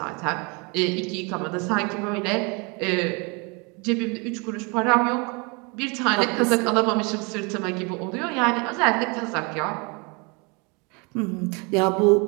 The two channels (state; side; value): quieter; left; 31.0 dB